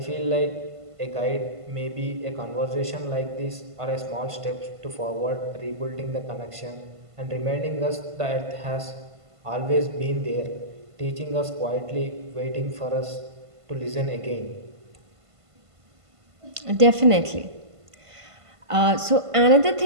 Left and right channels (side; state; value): left; late; 1.5 ms